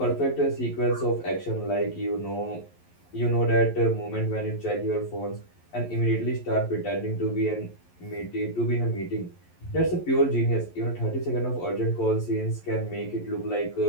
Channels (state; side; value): late; right; 11 ms